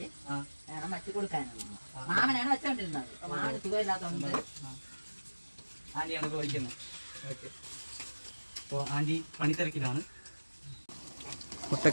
വേണം വച്ച് കൊടുക്കാനുള്ളത്. മാമനാണ് വെച്ചോണ്ടിരുന്നത്. മാമന് സുഖമില്ലാത്തതുകൊണ്ട് ആന്റിയാണ് ഇപ്പോൾ വയ്ക്കുന്നത്. ഓക്കെ, അപ്പോൾ ആന്റി പണിത്തിരക്കിലാണ്.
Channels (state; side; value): inverted; both; correlation -1.00